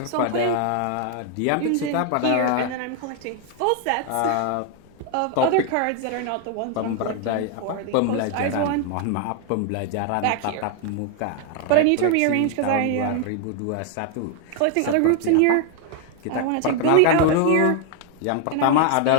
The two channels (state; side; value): different; both; correlation 0.00